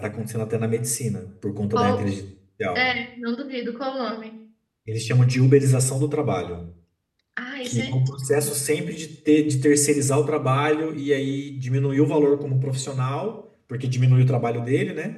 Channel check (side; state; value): both; identical; correlation 1.00